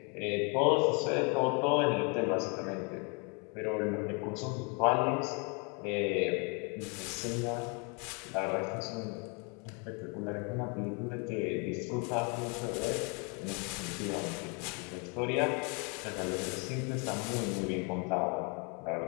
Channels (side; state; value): right; quieter; 34.1 dB